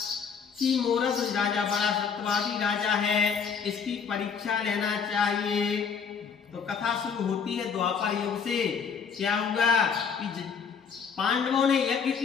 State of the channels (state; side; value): quieter; right; 6.4 dB